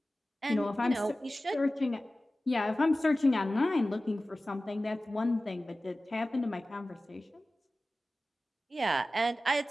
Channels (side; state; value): both; normal; correlation 0.96